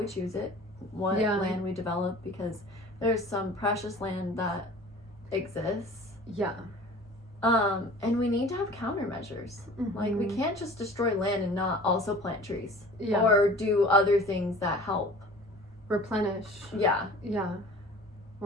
choose it, what land we develop, because there's some precious land that exists. Yeah. And we need to have countermeasures. Mm-hmm. Like, we can't just destroy land and not also plant trees. Yeah. Or do other things that help. Replenish. Yeah. Yeah.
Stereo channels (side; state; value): both; normal; correlation 0.44